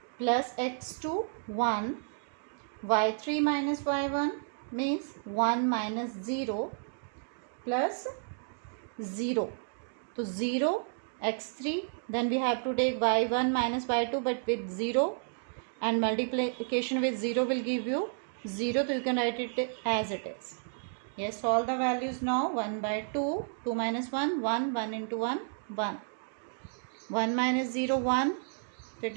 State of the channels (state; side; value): silent; left; digital silence